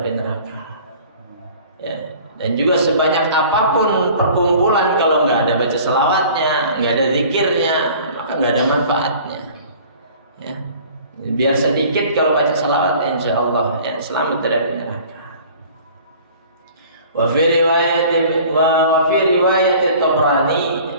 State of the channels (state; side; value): inverted; both; correlation -0.48